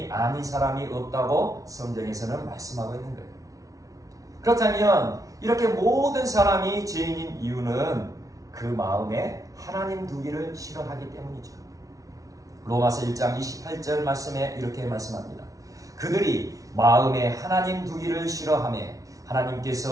아닌 사람이 없다고 성경에서는 말씀하고 있는 거예요. 그렇다면 이렇게 모든 사람이 죄인인 이유는 그 마음에 하나님 두기를 싫어하기 때문이죠. 로마서 1장 28절 말씀에 이렇게 말씀합니다. 그들이 마음에 하나님 두기를 싫어하며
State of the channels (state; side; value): late; left; 0.17 ms